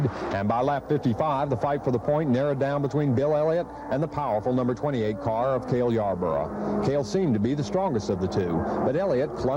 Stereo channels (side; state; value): both; identical; correlation 1.00